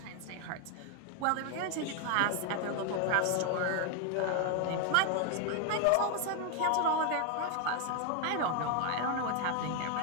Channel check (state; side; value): different; both; correlation 0.00